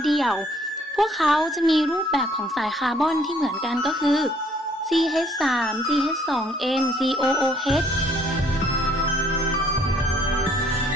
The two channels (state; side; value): normal; both; correlation 0.62